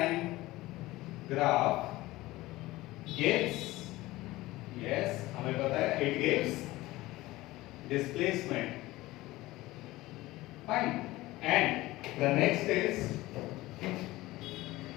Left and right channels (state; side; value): quieter; right; 18.5 dB